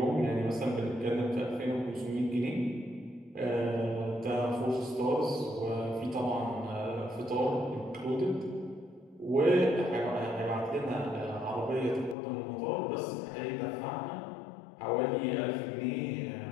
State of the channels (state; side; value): drops out; right; at 12.2 s